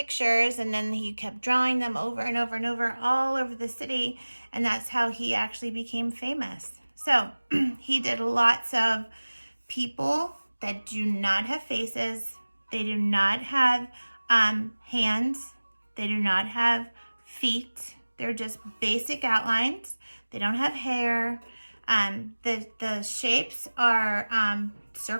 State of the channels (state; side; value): inverted; both; correlation -1.00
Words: and then he kept drawing them over and over and over all over the city, and that's how he actually became famous. So he did lots of people that do not have faces, they do not have hands, they do not have feet, they're just basic outlines. They don't have hair. The shapes are